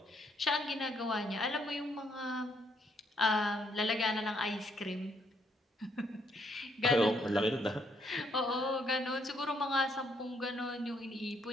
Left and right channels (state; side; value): normal; both; correlation 0.72